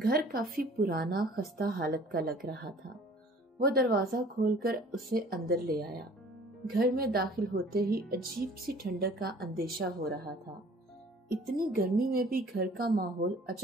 काफी पुराना खस्ता हालत का लग रहा था। वो दरवाजा खोलकर उसे अंदर ले आया। घर में दाखिल होते ही अजीब सी ठंडक का अंदेशा हो रहा था। इतनी गर्मी में भी घर का माहौल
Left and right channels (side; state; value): both; normal; correlation 0.51